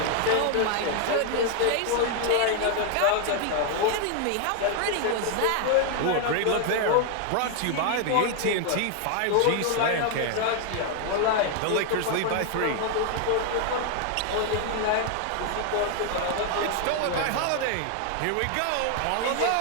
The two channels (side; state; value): both; different; correlation 0.00